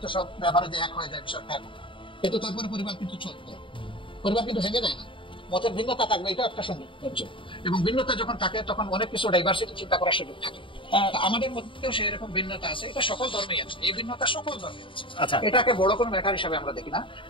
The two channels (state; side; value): late; right; 0.25 ms